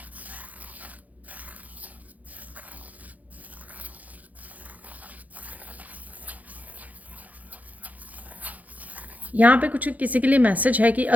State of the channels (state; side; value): late; left; 0.077 ms